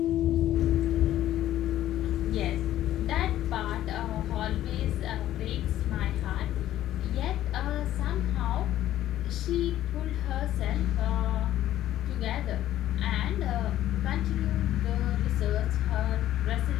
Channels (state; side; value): quieter; right; 13.0 dB